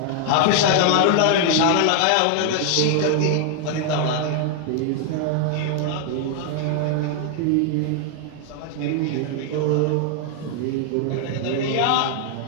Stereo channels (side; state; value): both; different; correlation 0.00